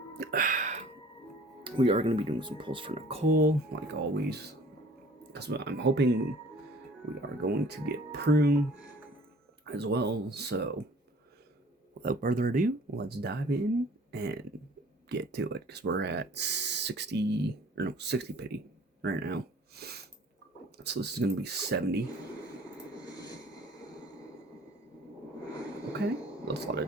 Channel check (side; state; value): both; normal; correlation 0.51